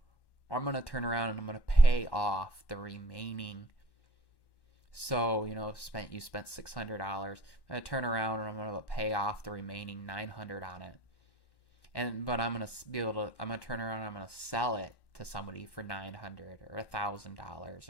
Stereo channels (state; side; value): late; right; 1.1 ms